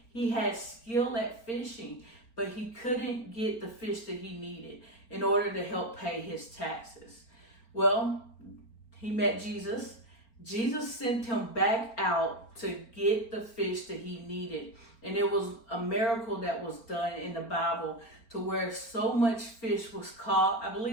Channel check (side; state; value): right; late; 4.5 ms